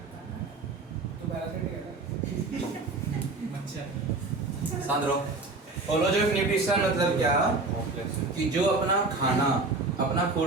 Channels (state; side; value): quieter; left; 3.5 dB